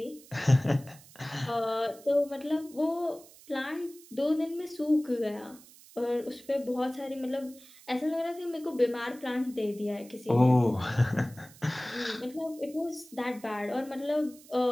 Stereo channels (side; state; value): right; noise; hiss, 22 dB below the sound